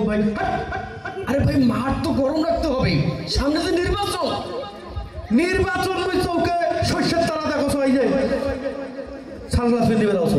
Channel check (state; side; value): identical; both; correlation 1.00